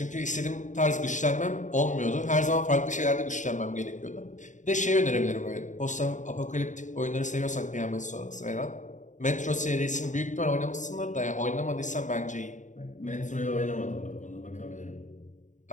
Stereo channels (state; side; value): late; right; 0.36 ms